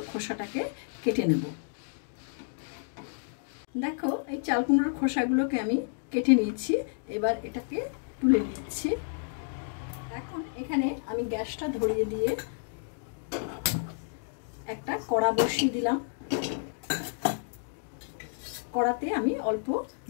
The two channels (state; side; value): silent; right; digital silence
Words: খোসাটাকে কেটে নেব। দেখো এই চাল কুমড়োর খোসাগুলোকে আমি কেটে নিয়েছি। এবার এটাকে তুলে নিচ্ছি। এখন এখানে আমি গ্যাসটা ধরিয়ে দিয়ে একটা কড়া বসিয়ে দিলাম। কড়াতে আমি অল্প